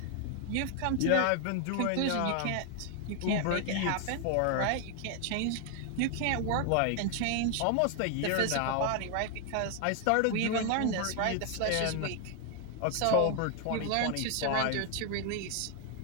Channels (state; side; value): different; both; correlation 0.00